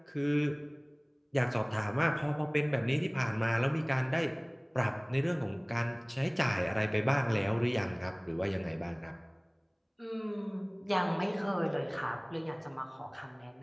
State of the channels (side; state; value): both; identical; correlation 1.00